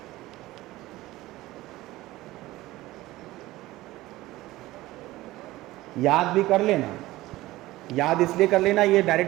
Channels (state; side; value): quieter; left; 17.6 dB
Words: याद भी कर लेना। याद इसलिए कर लेना, ये